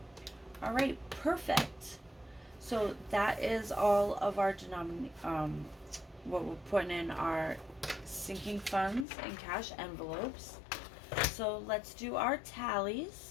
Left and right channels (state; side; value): drops out; right; at 9.1 s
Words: All right, perfect. So that is all of our what we're putting in our sinking funds and cash envelopes. So let's do our